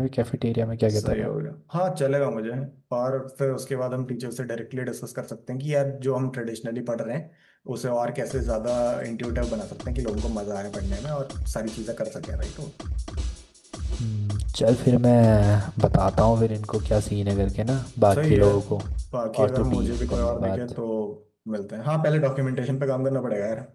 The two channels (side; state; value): both; identical; correlation 1.00